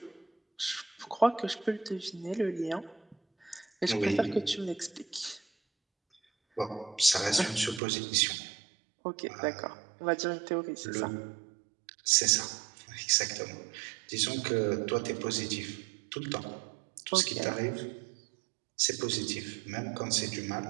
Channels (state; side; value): drops out; left; at 7.8 s